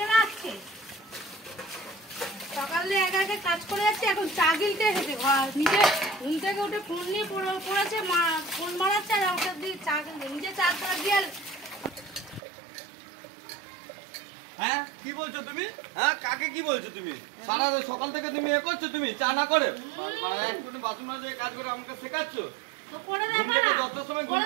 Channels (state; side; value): drops out; left; at 12.4 s